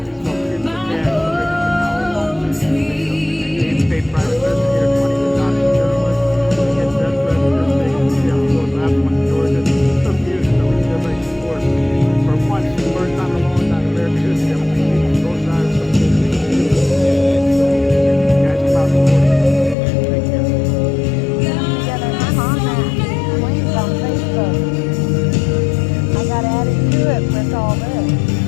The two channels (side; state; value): right; drops out; at 19.8 s